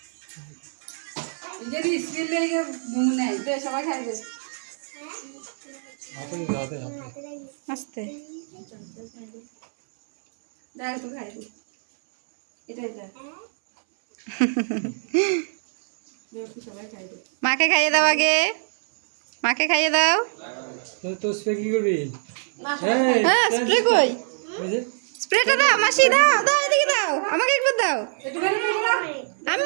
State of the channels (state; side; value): silent; left; 63 dB below the other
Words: যদি স্কিল লেগে ঘুম নেই দে সবাই খাই দে আস্তে দেখ তো খাই দে এটাই দেখ সবাই খাই দে মাকে খাইয়ে দাও আগে মাকে খাইয়ে দাও তো স্প্রে কি করবি হ্যাঁ স্প্রে কই স্প্রেটা দাও মাসি দাও দাও এদিকে দাও আমাকে একবার দাও আমি